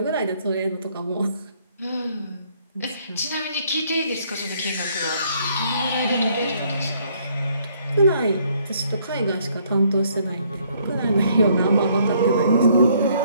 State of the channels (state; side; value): inverted; both; correlation -0.66